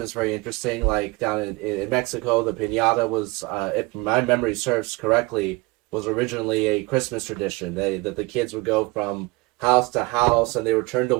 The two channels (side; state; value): left; quieter; 24.8 dB